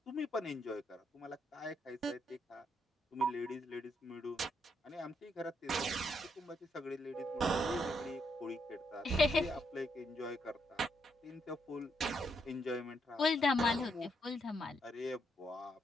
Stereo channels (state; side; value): normal; both; correlation 0.77